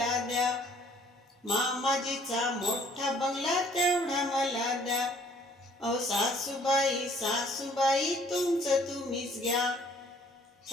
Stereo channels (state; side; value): normal; both; correlation 0.60